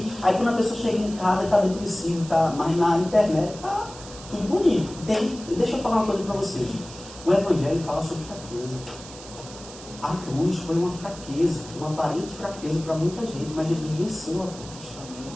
Aí quando a pessoa chega em casa, está depressivo, mas na internet está tudo bonito. Deixa eu falar uma coisa para vocês. O Evangelho fala sobre fraqueza. A cruz foi uma fraqueza, uma aparente fraqueza para muita gente, mas Jesus venceu a cruz.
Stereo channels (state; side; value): noise; right; hiss, 16 dB below the sound